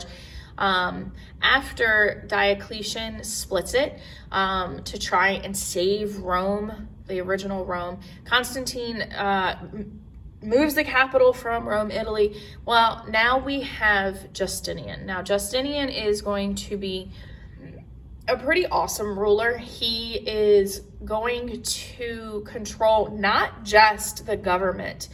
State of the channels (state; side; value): identical; both; correlation 1.00